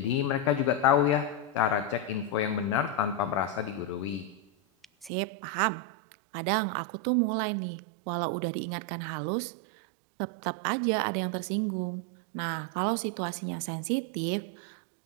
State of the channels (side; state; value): left; drops out; at 5.1 s